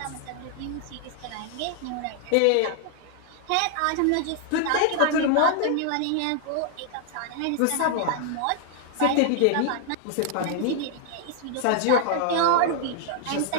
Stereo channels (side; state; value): both; different; correlation 0.00